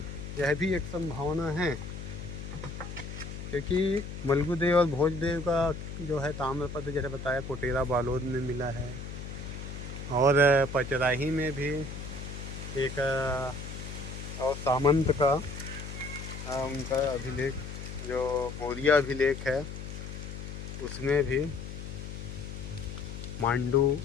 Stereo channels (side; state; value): left; noise; hum, 9 dB below the sound